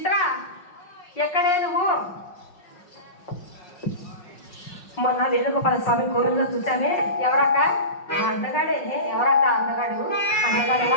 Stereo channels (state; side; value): late; right; 5.5 ms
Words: ఎక్కడే నువ్వు? మొన్న వేణుగోపాల స్వామి కోవిల్లో చూచానే. ఎవరక్క? అందగాడే. ఎవరక్క అందగాడు? అందగాడు